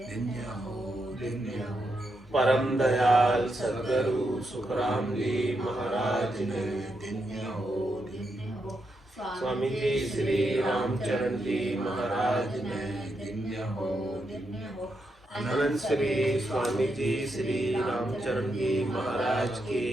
परम दयाल सद्गुरु सुखराम जी महाराज ने, स्वामी जी श्री रामचरण जी महाराज ने, अनंत श्री स्वामी जी श्री रामचरण जी महाराज के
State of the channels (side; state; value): both; normal; correlation 0.83